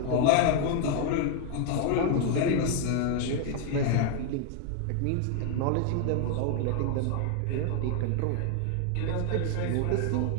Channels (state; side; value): different; both; correlation 0.00